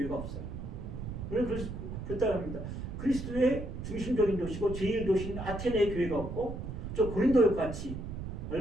없어요. 우리는 그렇다고 합니다. 그리스도의 중심적인 도시고 제일 도시인 아테네의 교회가 없고 저 고린도 같이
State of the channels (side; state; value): right; noise; rumble, 7 dB below the sound